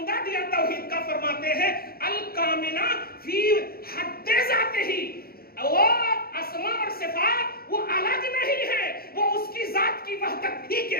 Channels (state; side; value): late; right; 0.44 ms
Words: دیا توحید کا، فرماتے ہیں الکاملہ فی حد ذاتہ، وہ اسما اور صفات وہ الگ نہیں ہے، وہ اس کی ذات کی وحدت ہی کے